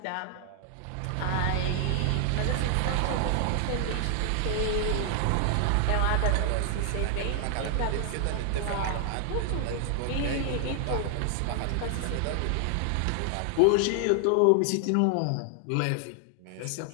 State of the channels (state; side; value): different; both; correlation 0.00